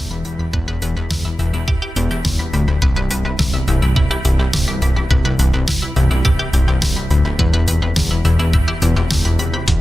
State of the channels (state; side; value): normal; both; correlation 0.94